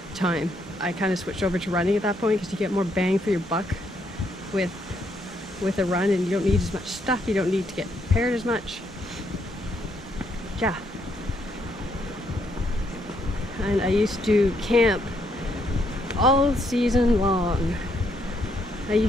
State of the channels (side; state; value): both; normal; correlation 0.73